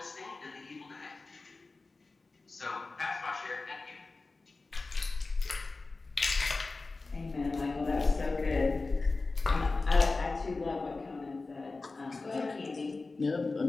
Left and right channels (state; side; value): quieter; right; 3.7 dB